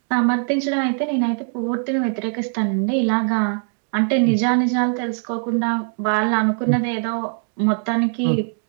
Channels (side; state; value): left; silent; 56 dB below the other